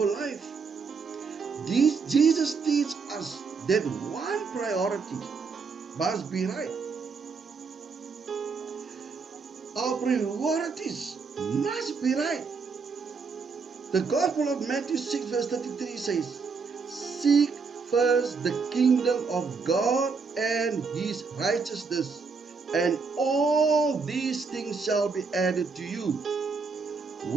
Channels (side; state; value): left; quieter; 5.0 dB